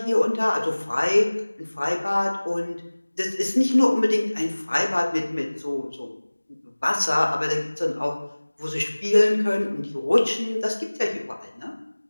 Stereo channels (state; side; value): inverted; both; correlation -1.00